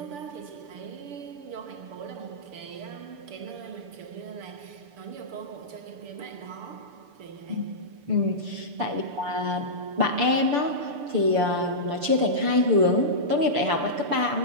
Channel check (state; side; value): late; left; 6.8 ms